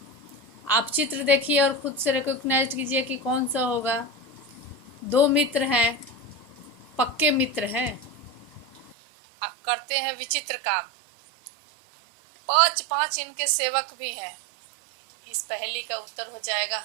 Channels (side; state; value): left; drops out; at 9.0 s